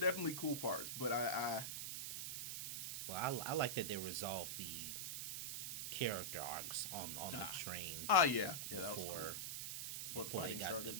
cool parts, but I like that they resolved the character arcs on the train. Yeah, that was cool. Before they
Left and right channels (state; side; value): noise; right; hiss, 4 dB below the sound